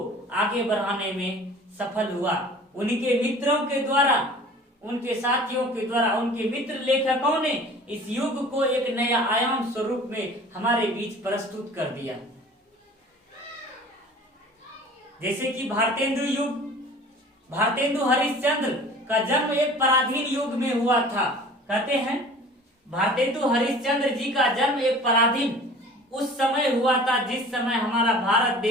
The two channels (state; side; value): normal; both; correlation 0.44